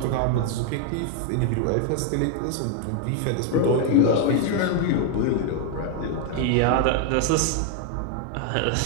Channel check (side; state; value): both; different; correlation 0.00